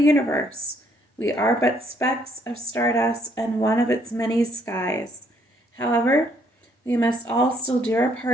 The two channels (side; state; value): both; normal; correlation 0.68